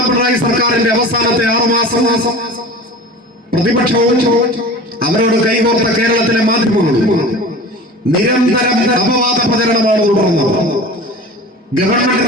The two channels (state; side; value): normal; both; correlation 0.37